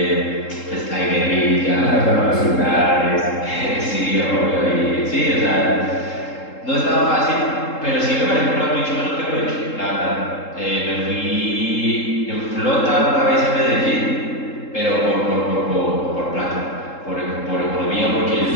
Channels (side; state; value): right; late; 3.7 ms